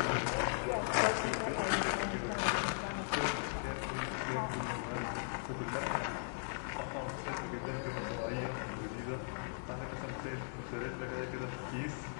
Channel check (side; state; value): right; silent; digital silence